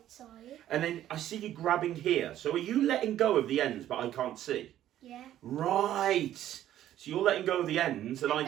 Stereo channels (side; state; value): left; quieter; 12.2 dB